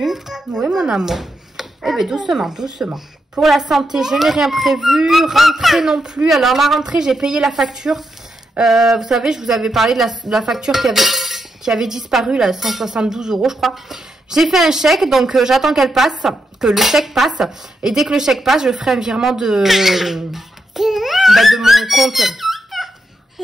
Oui, mon amour. Eh bien, doucement, doucement. Pour la santé, je n'ai rien prévu. Rentrée non plus. Alors, la rentrée, j'ai payé la facture. Vous savez, je vous avais parlé de la facture qui avait disparu, là, 172 €, je crois. J'ai fait un chèque, donc j'attends qu'elle passe, que le chèque passe. Et dès que le chèque passe, je ferai un virement de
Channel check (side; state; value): both; normal; correlation 0.84